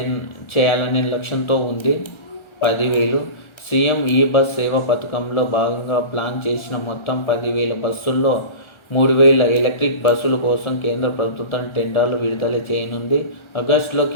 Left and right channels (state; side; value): late; right; 1.4 ms